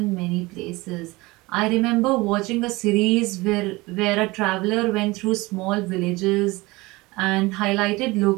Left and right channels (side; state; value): left; quieter; 22.1 dB